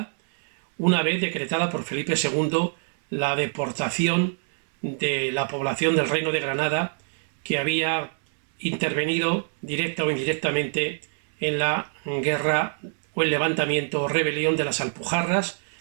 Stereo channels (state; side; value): silent; left; digital silence